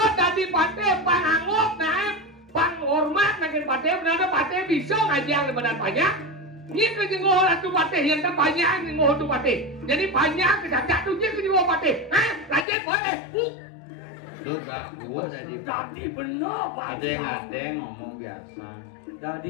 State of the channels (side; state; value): right; drops out; at 12.7 s